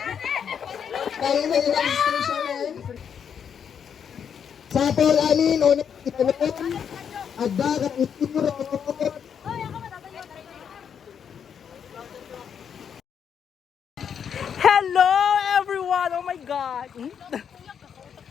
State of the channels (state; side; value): quieter; right; 7.7 dB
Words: Kaya na yung registration eh. Sa Paul Amin, o nagkitanong, ada ka ituro. Hello everyone! Oh my God!